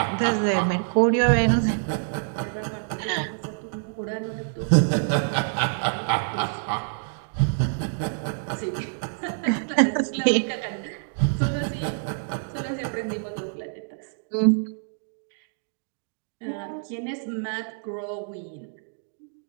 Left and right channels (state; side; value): silent; left; digital silence